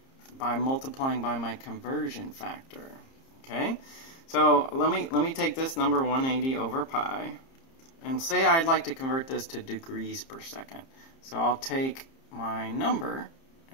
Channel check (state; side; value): late; right; 30 ms